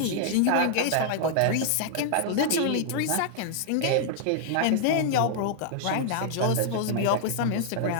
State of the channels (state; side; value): different; both; correlation -0.01